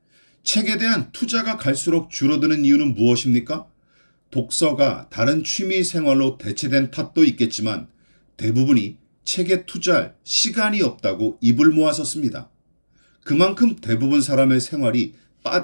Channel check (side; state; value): both; inverted; correlation -1.00